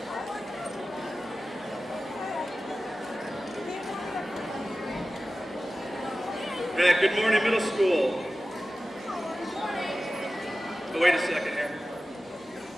Right, good morning, middle school. Oh, wait a second here.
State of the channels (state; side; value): normal; both; correlation 0.95